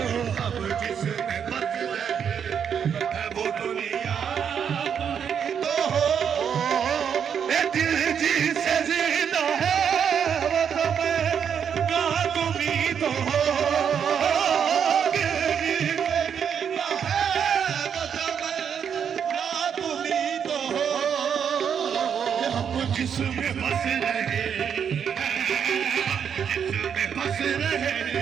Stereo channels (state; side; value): quieter; left; 7.7 dB